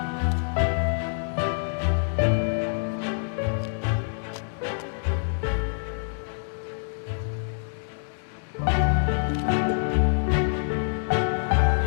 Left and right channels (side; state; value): right; silent; digital silence